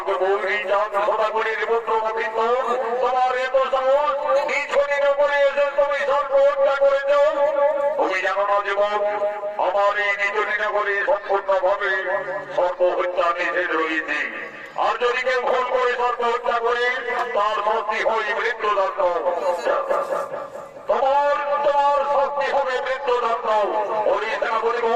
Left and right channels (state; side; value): identical; both; correlation 1.00